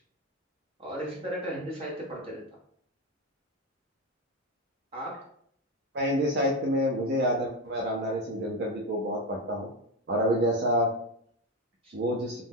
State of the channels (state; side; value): normal; both; correlation 0.14